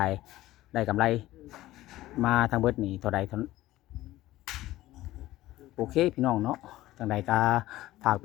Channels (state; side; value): quieter; right; 16.1 dB